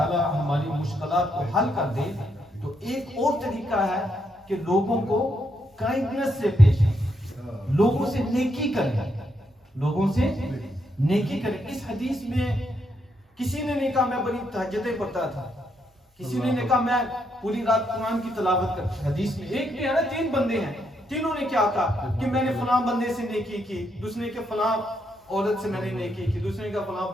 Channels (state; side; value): normal; both; correlation 0.78